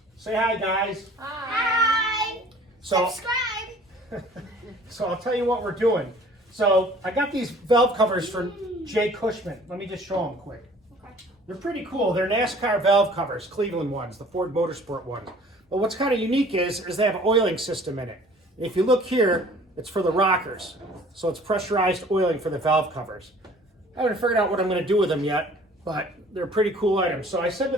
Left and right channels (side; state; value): both; normal; correlation 0.51